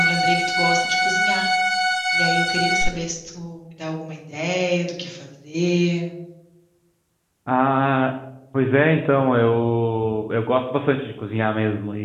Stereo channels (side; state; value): both; identical; correlation 1.00